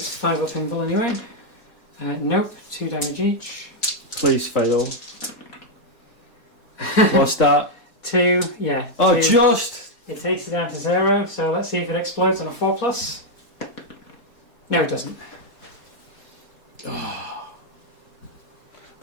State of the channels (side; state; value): right; late; 4.2 ms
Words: 5 up invul anyway. Nope, 2 damage each. Please fail. What's that? 2, yeah. Oh, 2. just! It takes it down to 0, so let's see if it explodes on a 4+. No, it doesn't. Oh.